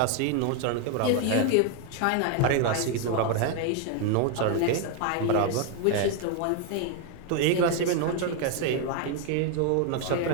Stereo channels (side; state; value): both; different; correlation 0.01